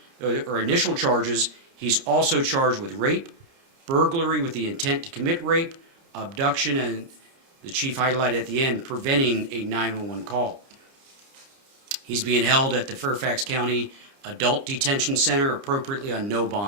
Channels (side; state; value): left; late; 30 ms